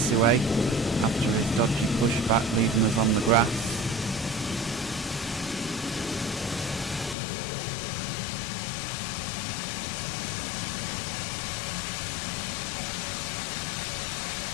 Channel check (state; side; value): drops out; right; at 7.2 s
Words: after his dodgy pushback leaving us on the grass.